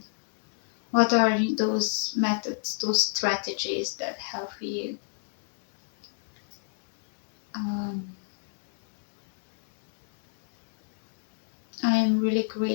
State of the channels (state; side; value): silent; right; digital silence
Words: What are those methods, those strategies that help you? Um, I am really